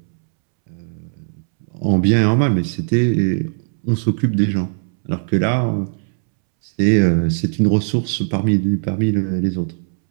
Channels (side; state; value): left; silent; 67 dB below the other